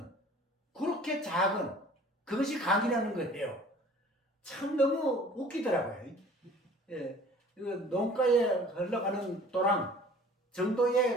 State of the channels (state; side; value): normal; both; correlation 0.49